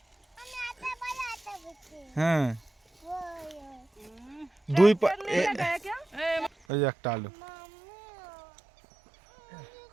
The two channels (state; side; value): drops out; left; at 6.5 s